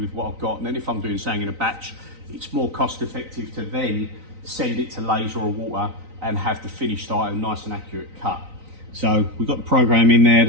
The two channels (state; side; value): late; left; 3.9 ms